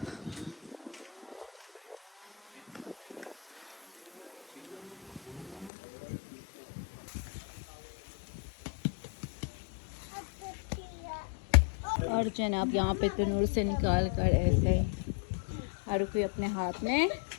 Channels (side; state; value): right; drops out; at 5.7 s